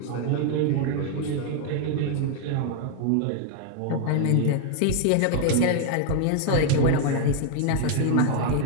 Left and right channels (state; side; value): different; both; correlation 0.00